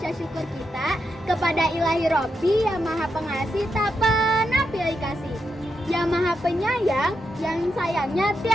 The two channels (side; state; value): both; normal; correlation 0.84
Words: syukur kita kepada Ilahi Robbi yang Maha Pengasih tak pernah pilih kasih, yang Maha Penyayang, yang sayangnya